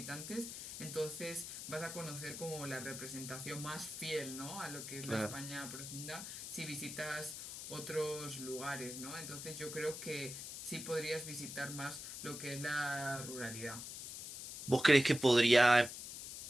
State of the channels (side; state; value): left; noise; hiss, 9 dB below the sound